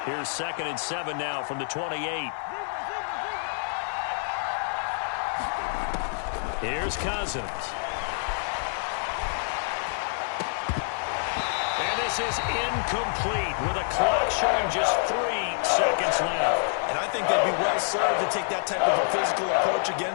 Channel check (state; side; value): silent; right; digital silence